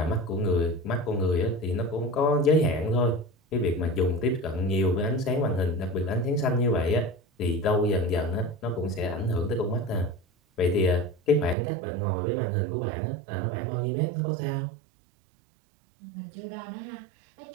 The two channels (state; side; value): drops out; left; at 11.6 s